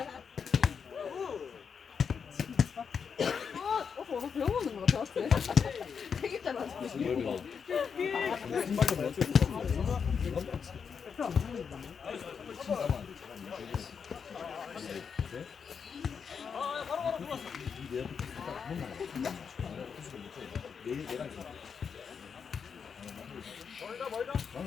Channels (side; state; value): right; quieter; 6.4 dB